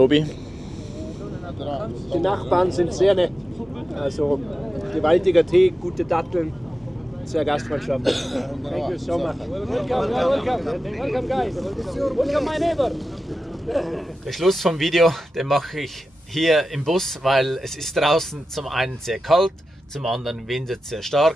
Die Nachbarn sind sehr nett. Also gewaltiger Tee, gute Datteln, sehr gastfreundschaftlich. Thank you so much. Welcome guys. Welcome my neighbor. Der Schluss vom Video, den mache ich hier im Bus, weil es ist draußen zum einen sehr kalt, zum anderen windet sehr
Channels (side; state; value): both; normal; correlation 0.93